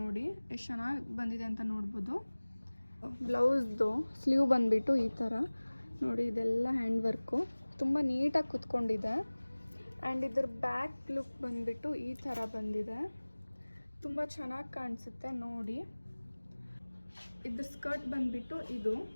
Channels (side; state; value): both; inverted; correlation -1.00